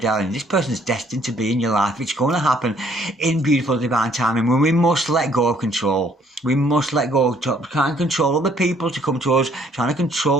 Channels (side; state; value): both; normal; correlation 0.63